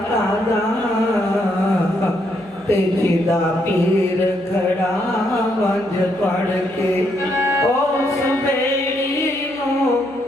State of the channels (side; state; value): right; noise; hum, 28 dB below the sound